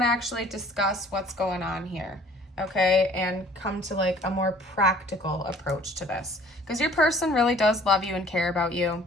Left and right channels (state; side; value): normal; both; correlation 0.53